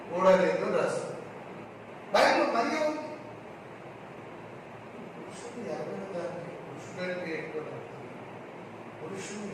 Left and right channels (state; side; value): identical; both; correlation 1.00